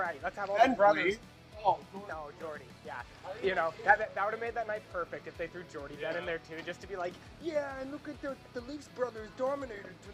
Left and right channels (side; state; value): both; identical; correlation 1.00